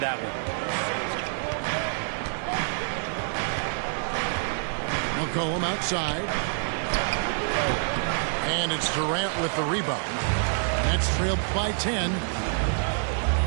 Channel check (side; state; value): left; silent; 60 dB below the other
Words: one. McCollum outside. And it's Durant with the rebound. Nets trailed by 10.